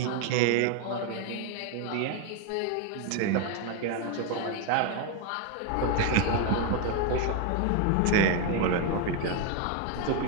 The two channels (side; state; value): both; different; correlation 0.01